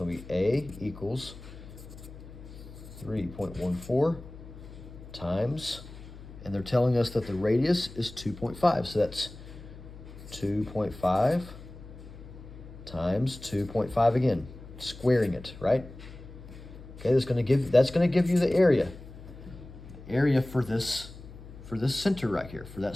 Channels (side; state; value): left; noise; hum, 16 dB below the sound